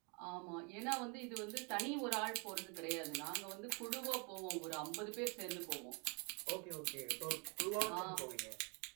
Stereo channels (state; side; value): quieter; left; 33.1 dB